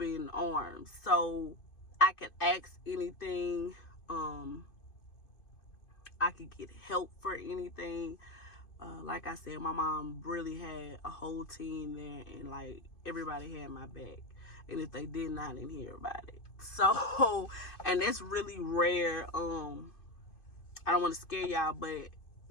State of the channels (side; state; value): right; late; 2.5 ms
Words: arms. So I could ask anything. I could get help for anything. Like I said, my mom really had a whole team there, and like everybody had my back. And if they did not, I didn't hear about it. So, and that's really rare. I don't want to scare y'all, but